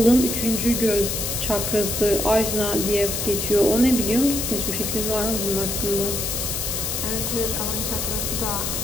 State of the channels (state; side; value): noise; left; hiss, 2 dB below the sound